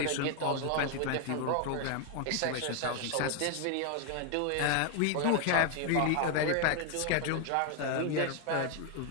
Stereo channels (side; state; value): both; different; correlation 0.01